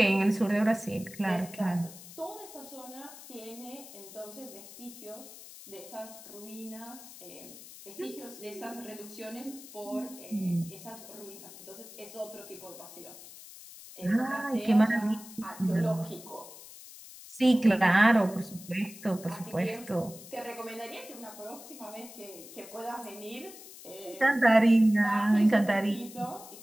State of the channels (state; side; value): noise; left; hiss, 16 dB below the sound